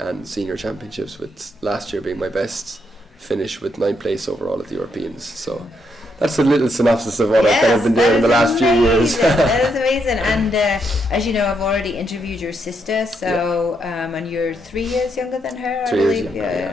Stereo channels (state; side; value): normal; both; correlation 0.78